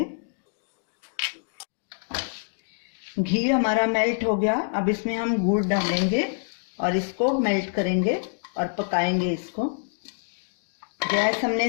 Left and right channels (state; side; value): silent; right; digital silence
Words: घी हमारा मेल्ट हो गया, अब इसमें हम गुड़ डालेंगे और इसको मेल्ट करेंगे और पकाएंगे इसको। गैस हमने